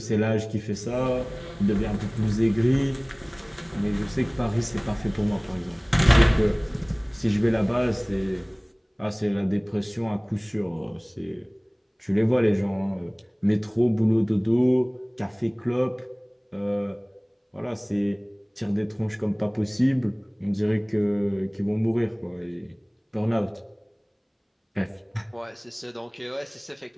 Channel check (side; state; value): both; identical; correlation 1.00